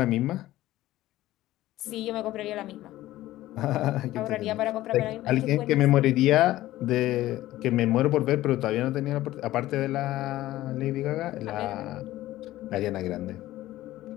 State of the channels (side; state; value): right; quieter; 15.6 dB